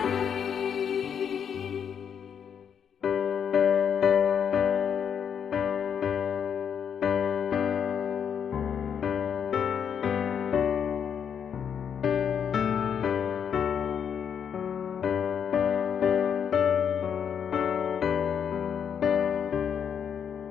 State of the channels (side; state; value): right; quieter; 7.8 dB